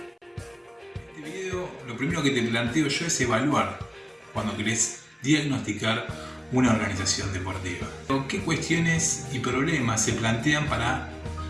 En este video, lo primero que te planteo yo es evaluar cuando querés diagnosticar una organización deportiva. ¿Qué cuestiones y problemas se plantean para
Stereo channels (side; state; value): both; identical; correlation 1.00